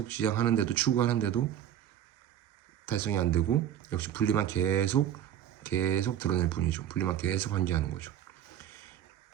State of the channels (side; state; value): left; quieter; 10.6 dB